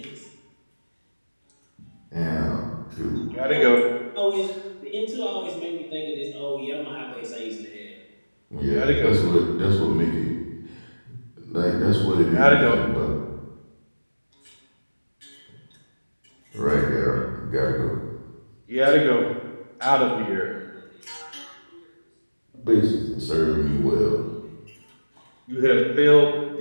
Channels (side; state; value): both; inverted; correlation -1.00